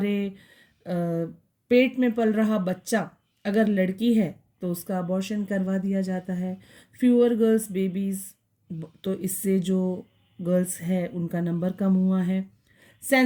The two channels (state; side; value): identical; both; correlation 1.00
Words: पेट में पल रहा बच्चा अगर लड़की है तो उसका अबॉर्शन करवा दिया जाता है. फ्यूअर गर्ल्स बेबीज़, तो इससे जो गर्ल्स है उनका नंबर कम हुआ है.